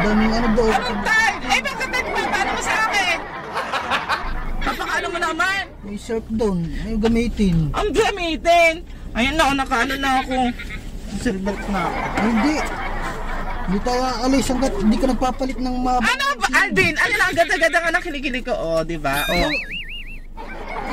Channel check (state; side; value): identical; both; correlation 1.00